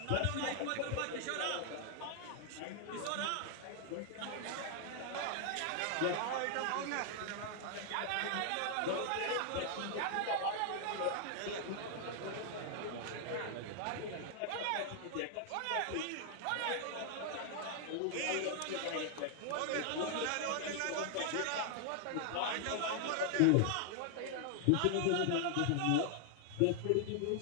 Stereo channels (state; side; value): different; both; correlation 0.00